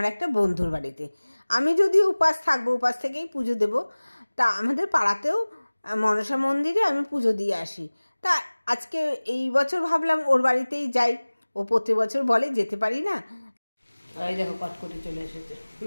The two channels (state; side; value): inverted; both; correlation -1.00